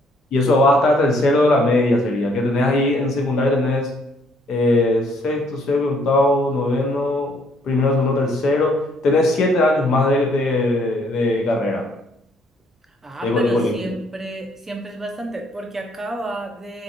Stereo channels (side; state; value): both; normal; correlation 0.66